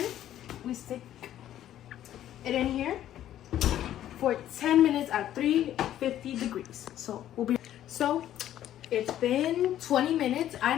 We stick it in here for 10 minutes at 350 degrees. So it's been 20 minutes. I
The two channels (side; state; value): right; quieter; 12.0 dB